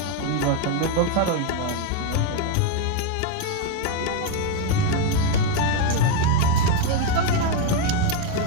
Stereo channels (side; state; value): both; different; correlation 0.01